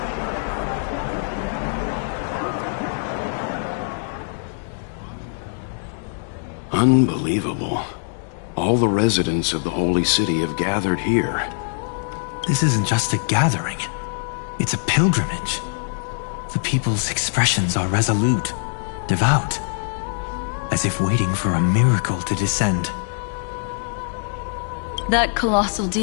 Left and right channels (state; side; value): silent; right; digital silence